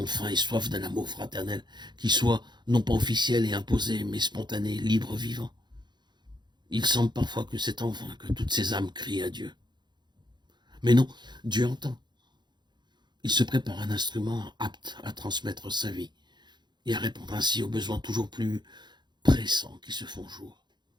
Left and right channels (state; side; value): late; left; 0.21 ms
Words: faim et soif d'un amour fraternel, qui soit non pas officiel et imposé, mais spontané, libre, vivant. Il semble parfois que c'est en vain que toutes ces âmes crient à Dieu. Mais non, Dieu entend. Il se prépare un instrument apte à transmettre sa vie et à répondre ainsi aux besoins toujours plus pressants qui se font jour.